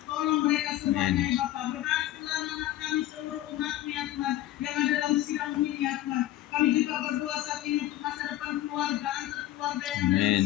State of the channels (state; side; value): quieter; right; 14.4 dB